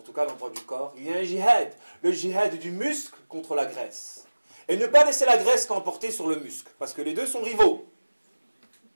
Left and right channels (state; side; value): inverted; both; correlation -1.00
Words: tout cas, dans le droit du corps, il y a un djihad, le djihad du muscle contre la graisse. Et ne pas laisser la graisse l'emporter sur le muscle, parce que les deux sont rivaux.